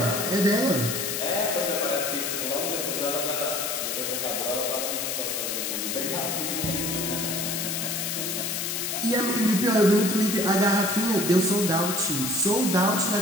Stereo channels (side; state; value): left; noise; hiss, 2 dB below the sound